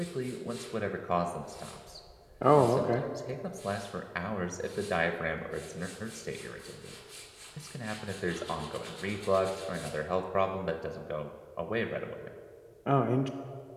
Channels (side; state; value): both; identical; correlation 1.00